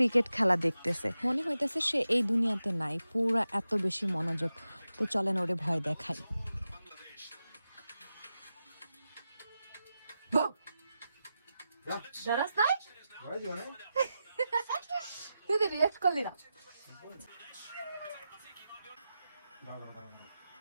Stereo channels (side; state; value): both; inverted; correlation -0.91